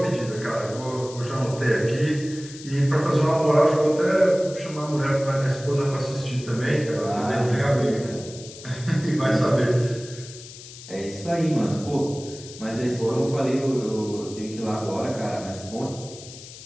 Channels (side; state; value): left; noise; hiss, 16 dB below the sound